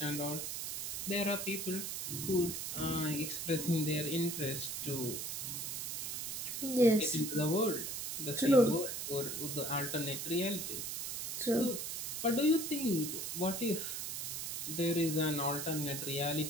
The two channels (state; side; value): noise; right; hiss, 4 dB below the sound